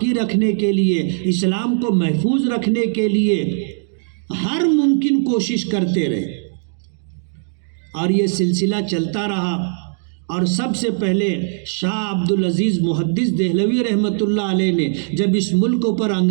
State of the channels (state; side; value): silent; left; digital silence